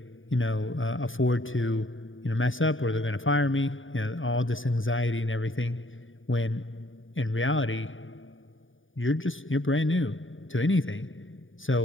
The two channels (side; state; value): right; late; 0.57 ms